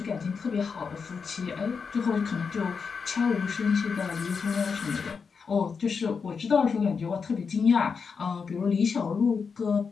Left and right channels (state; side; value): quieter; right; 5.6 dB